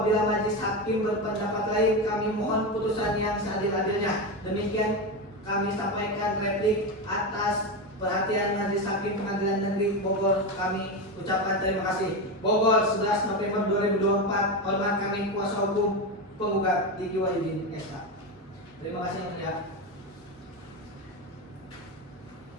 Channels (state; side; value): normal; both; correlation 0.16